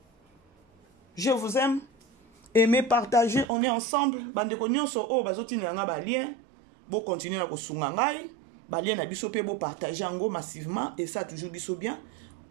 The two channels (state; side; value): drops out; left; at 3.5 s